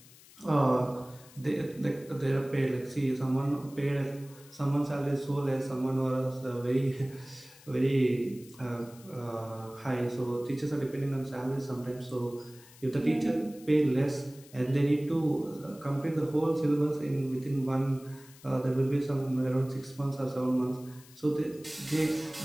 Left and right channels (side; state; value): left; noise; hiss, 23 dB below the sound